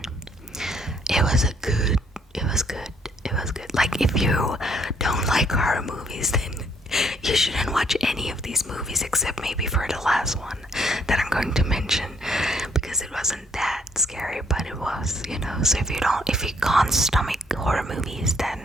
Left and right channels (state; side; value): normal; both; correlation 0.67